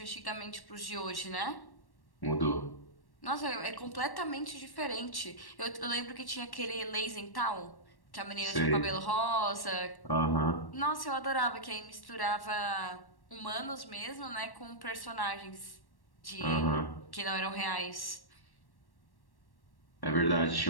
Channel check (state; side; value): late; right; 1.1 ms